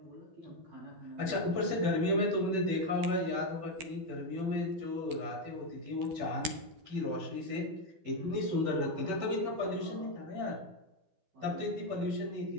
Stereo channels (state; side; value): late; left; 12 ms